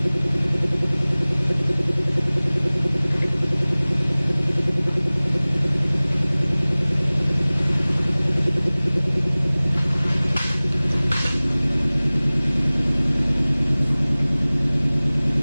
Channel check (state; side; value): inverted; both; correlation -0.99